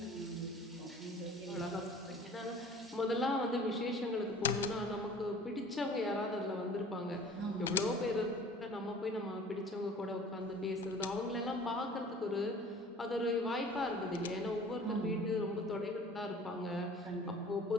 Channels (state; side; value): normal; both; correlation 0.46